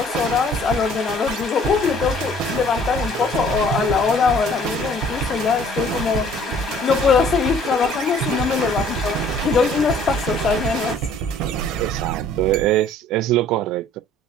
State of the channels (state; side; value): normal; both; correlation 0.55